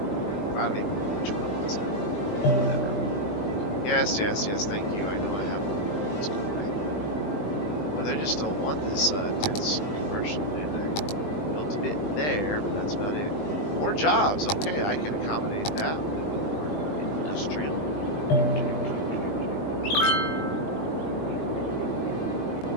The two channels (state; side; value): late; right; 20 ms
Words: don't even know which one it was now. Whatever. Yes, yes, yes, thank you. I know I have. Let's go away. Well, they just don't want this dense commercial, do they? Built a bit there, but that's about it. More jobs. Okay, I can accommodate that. We need more industrial.